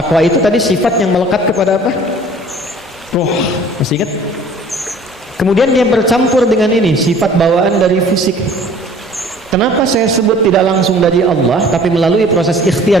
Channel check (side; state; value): both; normal; correlation 0.50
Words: itu tadi sifat yang melekat kepada apa? Roh. Masih ingat? Kemudian dia bercampur dengan ini, sifat bawaan dari fisik. Kenapa saya sebut tidak langsung dari Allah tapi melalui proses